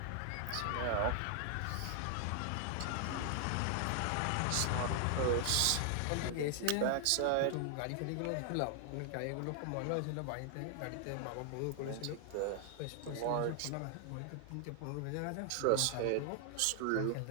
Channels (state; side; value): different; both; correlation 0.00